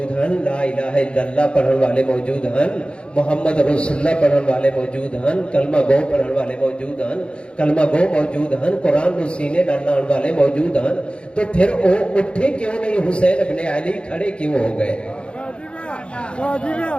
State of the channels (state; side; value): late; right; 0.056 ms